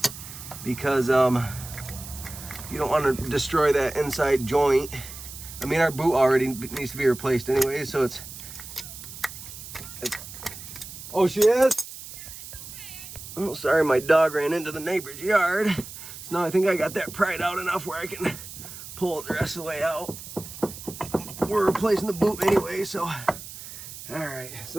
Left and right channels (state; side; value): noise; right; hiss, 13 dB below the sound